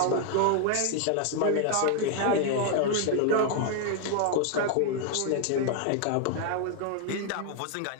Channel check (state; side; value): different; both; correlation 0.00